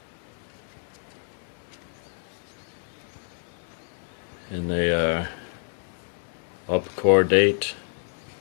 And they are upcordate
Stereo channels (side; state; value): right; silent; 59 dB below the other